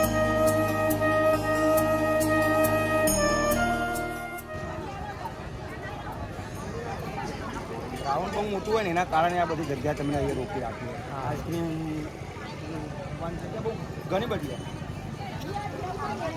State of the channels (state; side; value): identical; both; correlation 1.00